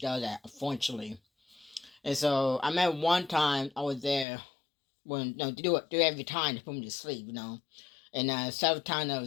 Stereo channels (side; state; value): right; drops out; at 4.2 s